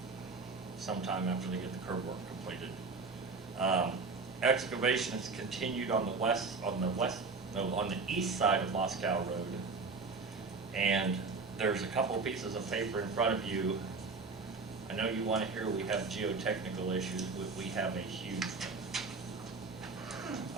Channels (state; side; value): quieter; left; 4.2 dB